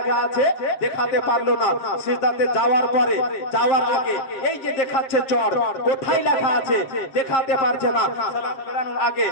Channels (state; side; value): late; right; 7.5 ms